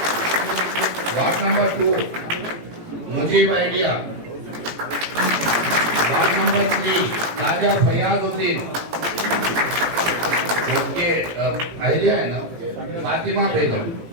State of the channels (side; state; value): left; late; 18 ms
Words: Ward number 2 Mujeeb आइडिया। Ward number 3 ताजा फरियादुद्दीन, उनके आइडिया है ना फातिमा बेगम।